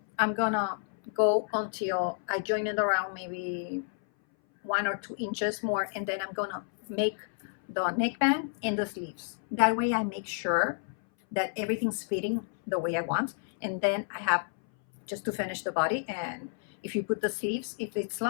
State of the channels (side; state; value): right; silent; 58 dB below the other